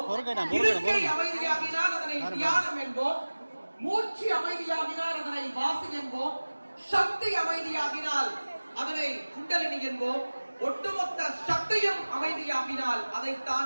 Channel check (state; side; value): inverted; both; correlation -1.00